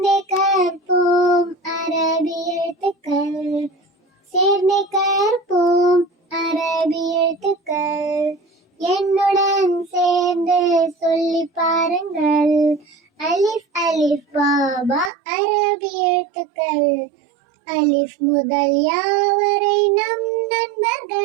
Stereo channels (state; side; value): drops out; left; at 15.1 s